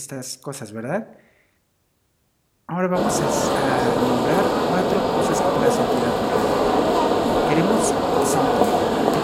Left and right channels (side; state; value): both; identical; correlation 1.00